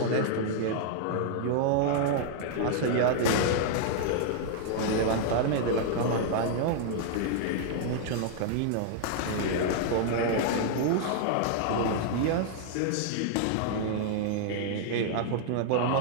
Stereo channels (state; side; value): different; both; correlation -0.01